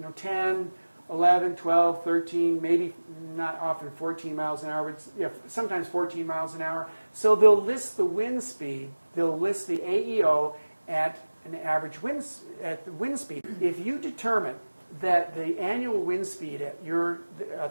10, 11, 12, 13, maybe not often 14 miles an hour, but sometimes 14 miles an hour. So they'll list the wind speed, they'll list the AEO at an average the wind speed. If you determine that the annual wind speed at your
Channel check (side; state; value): both; inverted; correlation -1.00